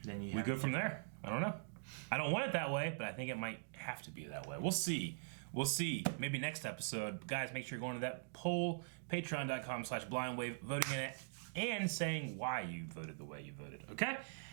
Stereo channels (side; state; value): left; silent; digital silence